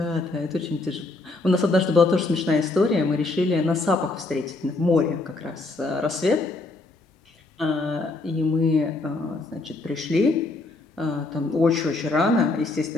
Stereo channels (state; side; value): quieter; right; 3.1 dB